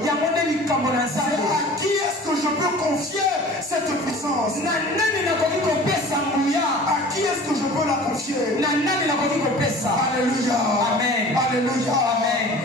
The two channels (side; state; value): both; normal; correlation 0.43